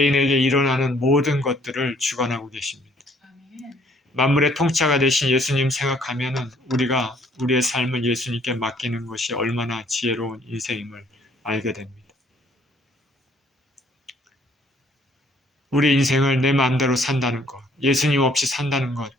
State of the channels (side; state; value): both; normal; correlation 0.62